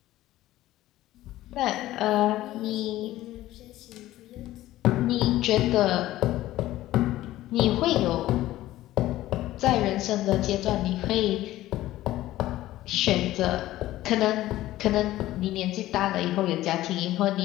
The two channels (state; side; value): quieter; right; 15.4 dB